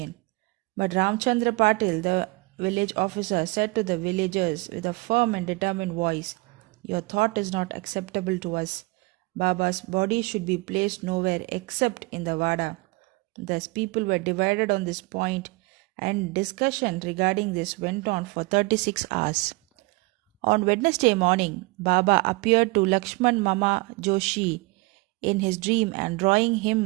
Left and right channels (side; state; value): left; quieter; 25.6 dB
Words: But Ramchandra Patil, the village officer, said to the villagers with a firm and determined voice, your thought is not acceptable to us. Baba's body should be placed nowhere except in the Vada. Thus people were divided on this point, and discussion regarding this went on for 36 hours. On Wednesday morning, Baba appeared to Lakshman Mama Joshi in his dream and drawing